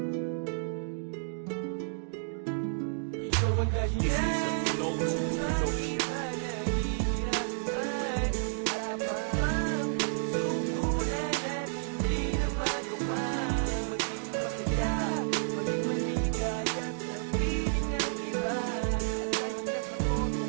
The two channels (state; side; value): silent; left; digital silence